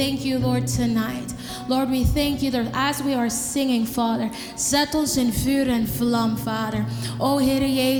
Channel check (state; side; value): identical; both; correlation 1.00